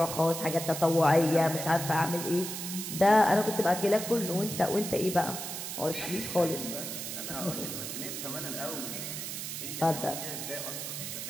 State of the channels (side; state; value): right; noise; hiss, 6 dB below the sound